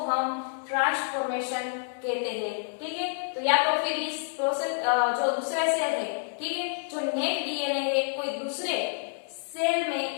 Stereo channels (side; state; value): right; silent; digital silence